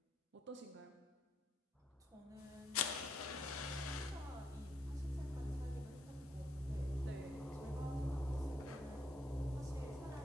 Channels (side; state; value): both; normal; correlation 0.74